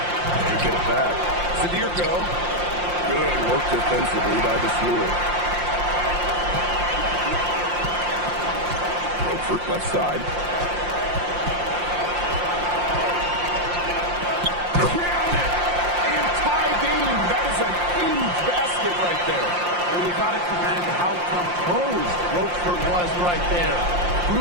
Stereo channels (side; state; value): left; late; 5.7 ms